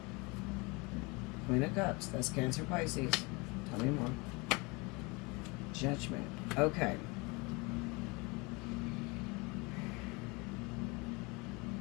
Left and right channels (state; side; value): quieter; right; 27.1 dB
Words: Queen of Cups. That's Cancer, Pisces. Tell me more. Judgment. Okay.